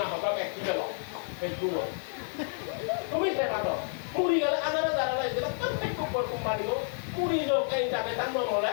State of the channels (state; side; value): silent; right; digital silence